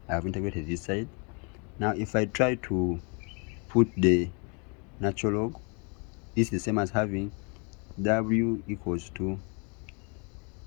have integrated this side. Now if I try to put the natural log, this is the same as having w equals to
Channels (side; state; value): right; quieter; 34.7 dB